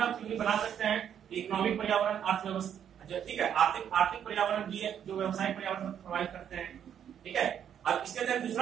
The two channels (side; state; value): left; quieter; 9.0 dB